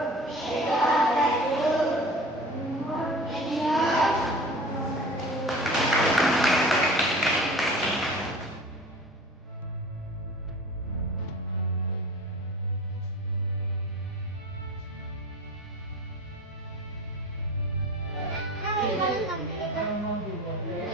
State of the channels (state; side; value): normal; both; correlation 0.39